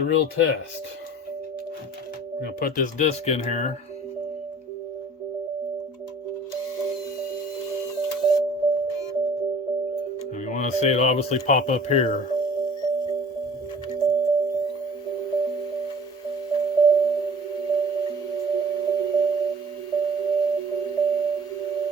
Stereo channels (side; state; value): both; normal; correlation 0.48